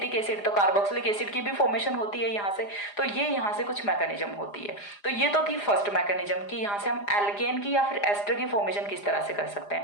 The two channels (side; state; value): right; late; 4.9 ms